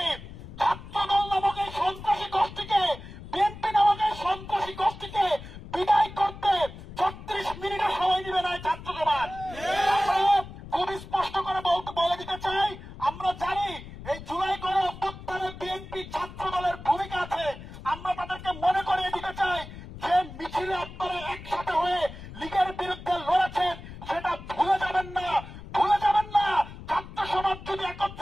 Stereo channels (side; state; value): left; noise; rumble, 14 dB below the sound